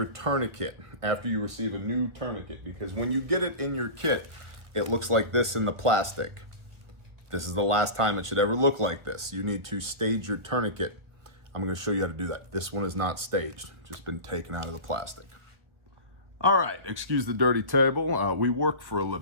tourniquet after you receive a new tourniquet. Because when you get it in your kit, it looks like this in the plastic. This is the last time it should ever look like this. You need to stage your tourniquet. I'm going to show you how to do that. This one is not staged, just been taken out of the plastic. All right, excuse the dirty table. We work for a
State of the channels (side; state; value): left; late; 1.2 ms